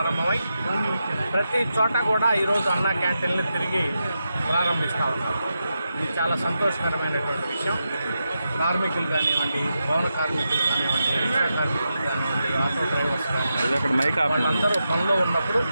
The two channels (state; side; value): inverted; both; correlation -0.87